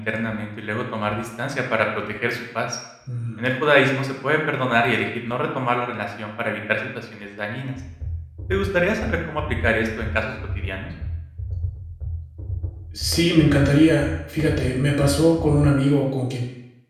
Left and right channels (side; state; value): both; identical; correlation 1.00